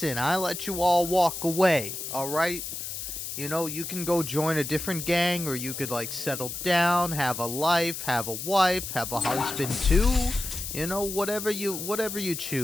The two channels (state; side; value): noise; left; hiss, 6 dB below the sound